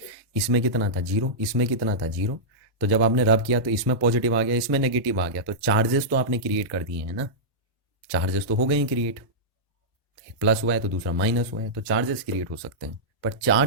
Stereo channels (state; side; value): normal; both; correlation -0.12